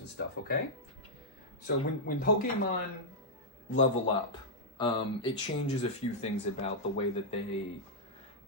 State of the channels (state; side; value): normal; both; correlation -0.08